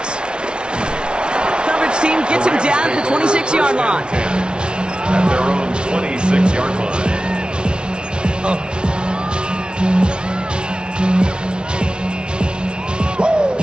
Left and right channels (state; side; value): late; left; 0.056 ms